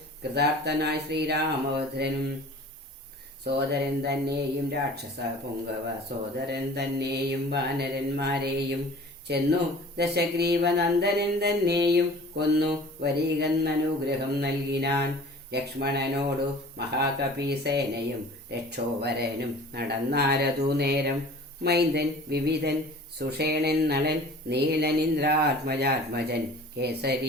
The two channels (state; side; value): normal; both; correlation 0.44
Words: കൃതാർത്ഥനായ ശ്രീരാമഭദ്രനും സോദരൻ തന്നെയും രാക്ഷസ പുങ്കവ സോദരൻ തന്നെയും വാനരന്മാരെയും ചെന്നു ദശഗ്രീവനന്ദനൻ തന്നെയും കൊന്നു വരികന്നനുഗ്രഹം നൽകിനാൻ. ലക്ഷ്മണനോടു മഹാകപീസേനയും രക്ഷോവരനും നടന്നാരതു നേരം. മൈന്ദൻ വിവിധൻ സുഷേണൻ നളൻ നീലനിന്ദ്രാത്മജാത്മജൻ